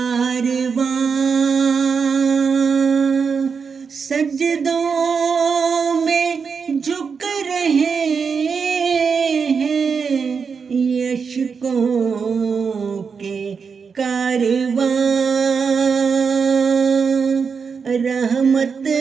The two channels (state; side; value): quieter; left; 5.8 dB